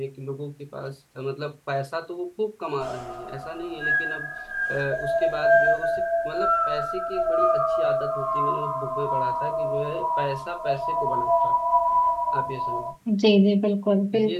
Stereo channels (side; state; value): both; identical; correlation 1.00